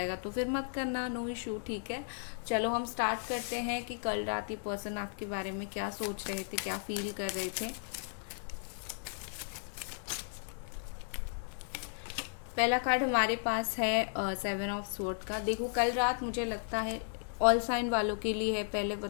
तो फिर मत करना, नो इशू, ठीक है। चलो हम स्टार्ट करते हैं कि कल रात ये पर्सन आपके बारे में क्या सोच रहे थे, क्या फील कर रहे थे। पहला कार्ड हमारे पास है 7 ऑफ स्वॉर्ड का। देखो कल रात मुझे लगता है ऑल साइन वालों के लिए है, पहले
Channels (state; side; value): silent; right; digital silence